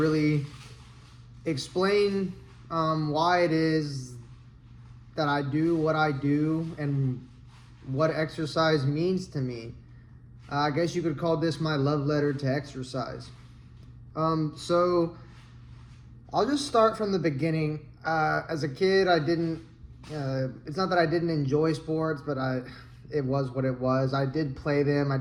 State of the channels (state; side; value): identical; both; correlation 1.00